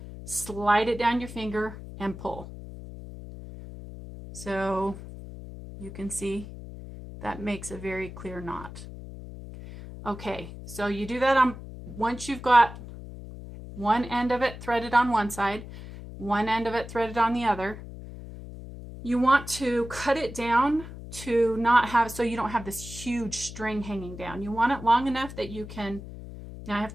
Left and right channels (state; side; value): noise; left; hum, 12 dB below the sound